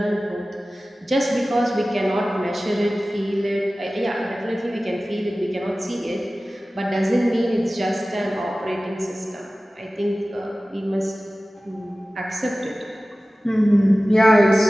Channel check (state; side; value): normal; both; correlation 0.97